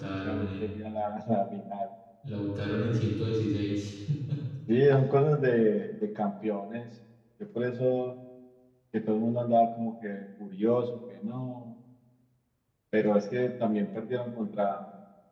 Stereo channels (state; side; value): identical; both; correlation 1.00